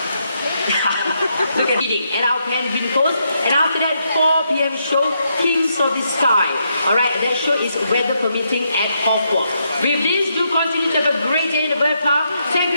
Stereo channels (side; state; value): both; inverted; correlation -0.79